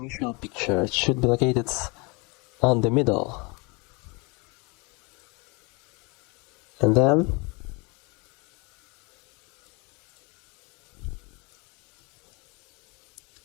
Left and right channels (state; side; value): quieter; right; 29.2 dB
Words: picture. It should be located on the middle. And then